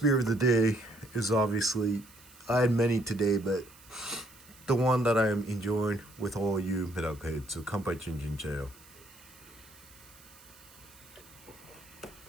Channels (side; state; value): right; noise; hiss, 23 dB below the sound